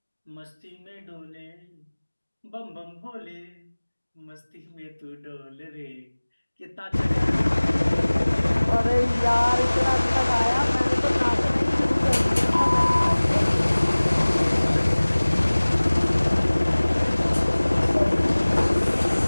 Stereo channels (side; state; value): both; inverted; correlation -1.00